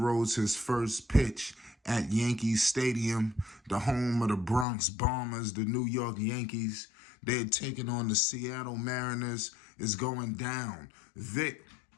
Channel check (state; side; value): drops out; right; at 4.7 s